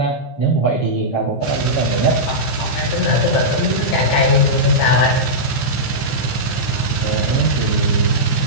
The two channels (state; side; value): late; right; 15 ms